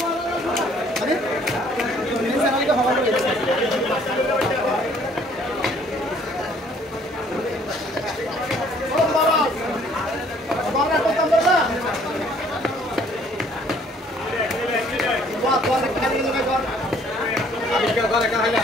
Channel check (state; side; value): normal; both; correlation 0.60